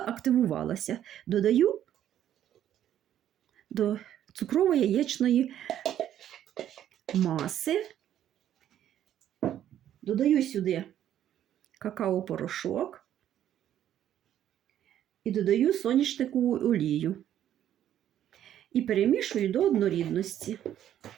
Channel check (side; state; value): left; quieter; 11.1 dB